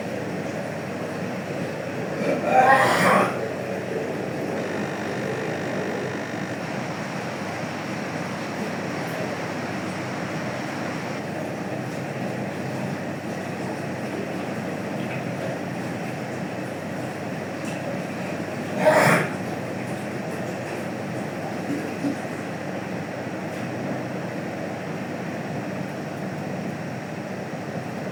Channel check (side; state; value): both; identical; correlation 1.00